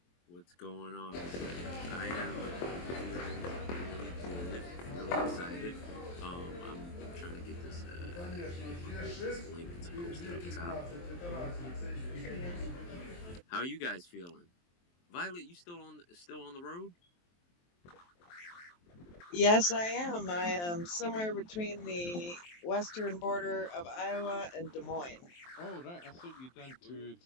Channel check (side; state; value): right; late; 23 ms